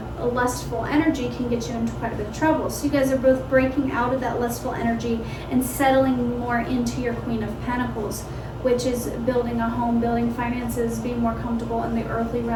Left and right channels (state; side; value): identical; both; correlation 1.00